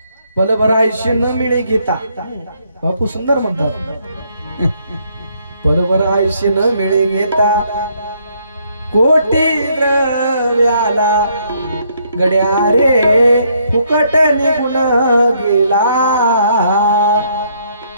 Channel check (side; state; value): both; inverted; correlation -0.70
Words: पलभर आयुष्य न मिळे घेता बापू सुंदर म्हणतात. पलभर आयुष्य न मिळे घेता कोटी द्रव्याला गड्या रे फुकट निघून गेला.